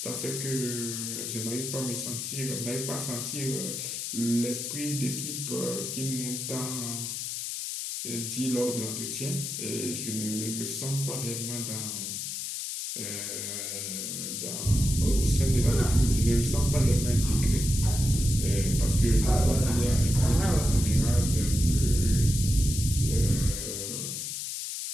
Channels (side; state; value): left; noise; hiss, 4 dB below the sound